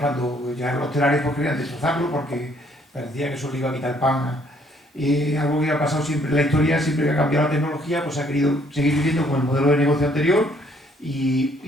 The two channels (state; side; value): normal; both; correlation 0.65